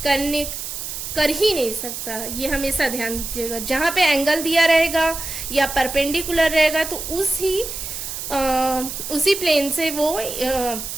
कर ही नहीं सकता। ये हमेशा ध्यान दीजिएगा, जहां पे एंगल दिया रहेगा या परपेंडिकुलर रहेगा तो उसी प्लेन से वो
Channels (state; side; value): noise; right; hiss, 7 dB below the sound